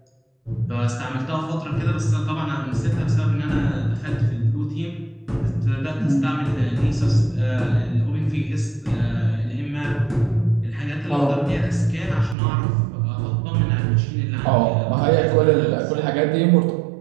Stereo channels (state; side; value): drops out; left; at 12.4 s